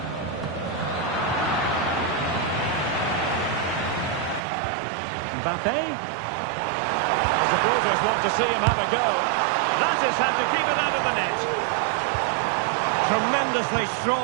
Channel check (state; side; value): drops out; left; at 4.4 s